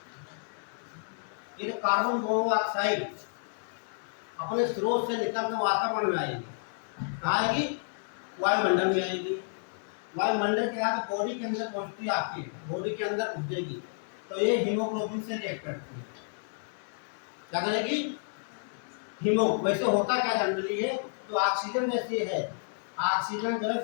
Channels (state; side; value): silent; right; digital silence